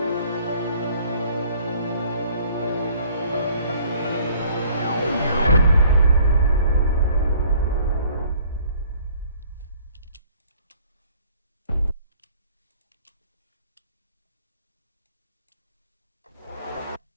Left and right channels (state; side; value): inverted; both; correlation -0.57